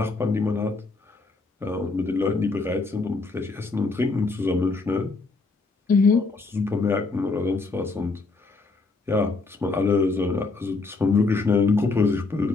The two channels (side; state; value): right; quieter; 3.8 dB